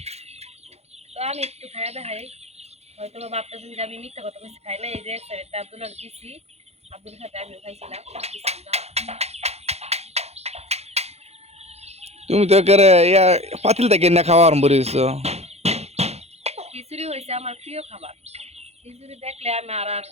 তো আমি একটু খাইয়া দেখাই, হয়তো বা ভাবতেছেন যে আমি মিথ্যা কথা বেশি খাই না। এই যে একটা আব্দুল্লাহ দিছি, আব্দুল সাথে আমিও খাইছিলাম। তুমি তো একেবারে ইয়া পাতিল থেকে না খাওয়া আরম্ভ করেছো। খিচুড়ি হয়েছে আমার প্রিয় খাবার। খিচুড়ি দেখলে আমি আর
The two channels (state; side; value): late; left; 0.31 ms